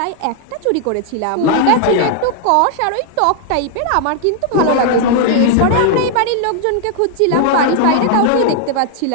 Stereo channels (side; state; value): both; different; correlation 0.00